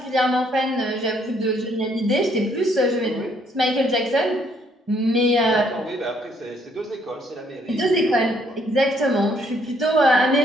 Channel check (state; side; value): normal; both; correlation 0.67